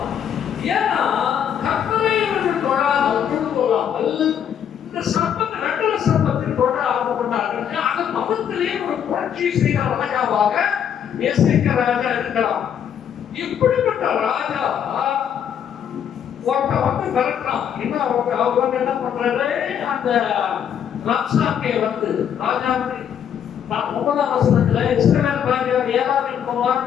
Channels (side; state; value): right; quieter; 8.8 dB